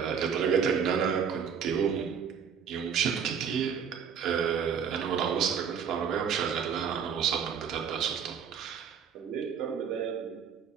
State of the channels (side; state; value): left; quieter; 7.2 dB